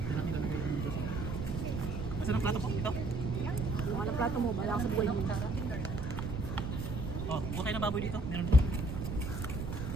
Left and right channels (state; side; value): noise; right; rumble, 5 dB below the sound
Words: Asan ang plato po? Ito? Walang plato mo, bala ka sa buhay mo. Oh, bukay na baboy dito. Meron.